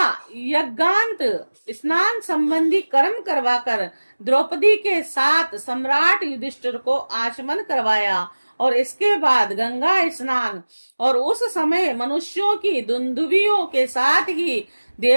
यज्ञांत स्नान संबंधी कर्म करवाकर द्रौपदी के साथ सम्राट युधिष्ठिर को आचमन करवाया और इसके बाद गंगा स्नान और उस समय मनुष्यों की दुंदुभियों के साथ ही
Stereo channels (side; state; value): both; inverted; correlation -1.00